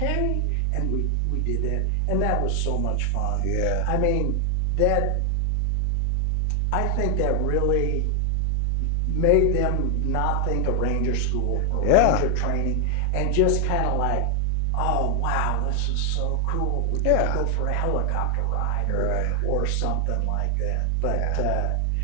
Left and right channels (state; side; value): different; both; correlation 0.00